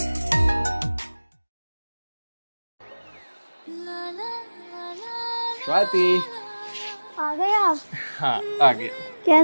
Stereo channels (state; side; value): inverted; both; correlation -1.00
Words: स्वाति। आ गए आप? हाँ आ गया।